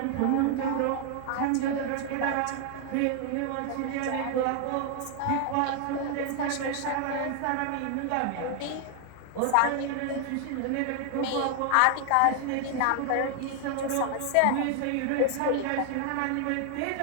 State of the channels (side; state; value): both; different; correlation 0.00